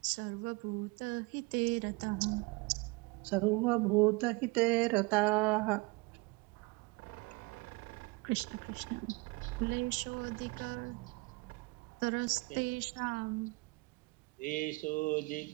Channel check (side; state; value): left; quieter; 25.7 dB